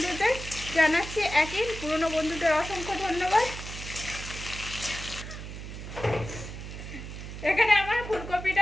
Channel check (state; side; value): noise; right; hum, 10 dB below the sound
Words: জানাচ্ছি একই, পুরনো বন্ধুদের অসংখ্য ধন্যবাদ। এখানে আমার